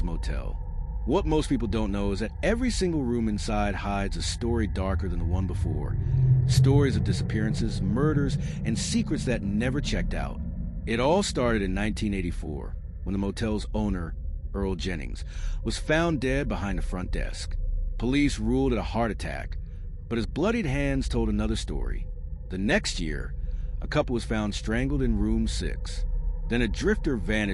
Motel. What most people don't know is that every single room inside hides a story darker than the one before. Stories of disappearances, murders, and secrets that never checked out. It all started in 1984, when the motel's owner, Earl Jennings, was found dead behind the front desk. Police ruled it a heart attack, but his bloodied hands told another story. The next year, a couple was found strangled in room 6. Then a drifter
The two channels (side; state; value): both; identical; correlation 1.00